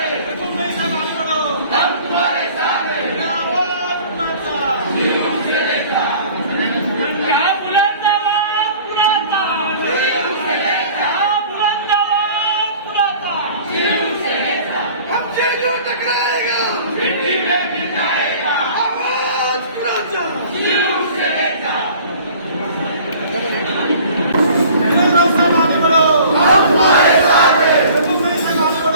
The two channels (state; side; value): inverted; both; correlation -0.48